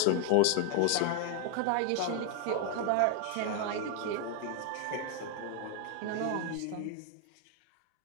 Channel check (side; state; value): both; different; correlation 0.00